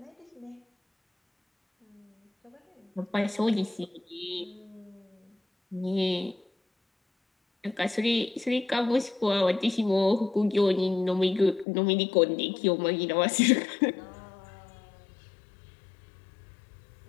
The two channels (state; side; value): drops out; right; at 11.7 s